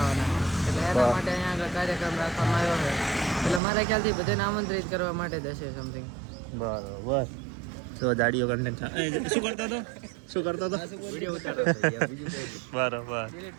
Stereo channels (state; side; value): drops out; left; at 3.6 s